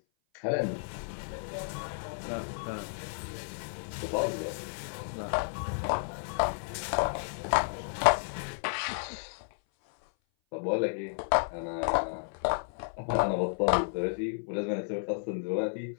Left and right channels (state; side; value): silent; right; 56 dB below the other